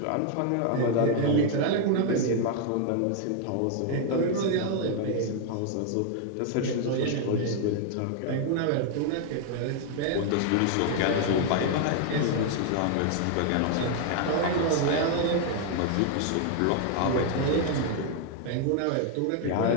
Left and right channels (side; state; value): both; different; correlation 0.00